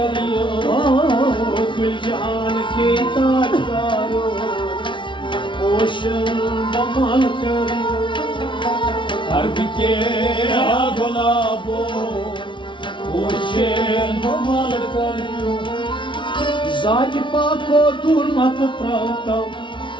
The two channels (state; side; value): late; right; 0.24 ms